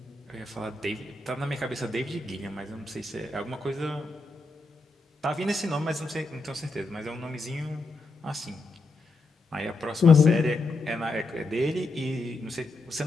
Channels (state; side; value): quieter; right; 3.1 dB